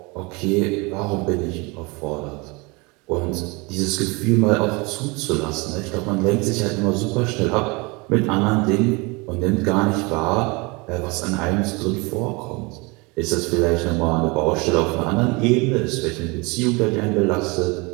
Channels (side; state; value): left; quieter; 27.2 dB